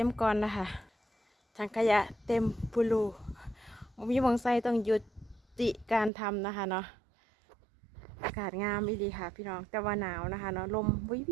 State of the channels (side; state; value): left; drops out; at 6.1 s